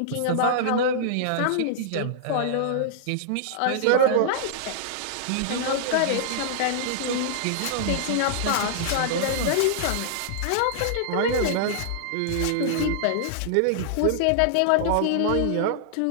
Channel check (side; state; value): both; different; correlation -0.01